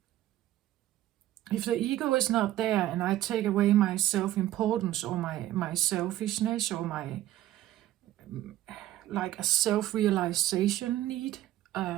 If the ego is not there and I take away my self-importance or my selfishness or my like a self-realization need,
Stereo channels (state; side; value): quieter; left; 13.9 dB